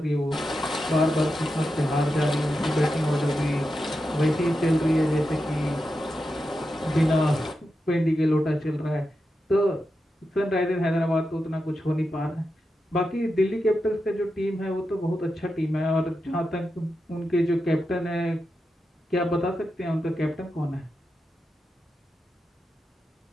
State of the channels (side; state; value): both; normal; correlation 0.89